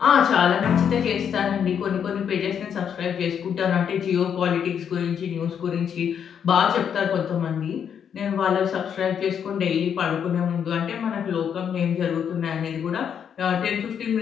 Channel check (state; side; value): quieter; right; 8.1 dB